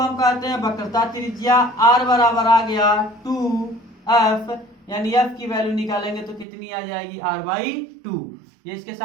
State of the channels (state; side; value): drops out; left; at 6.5 s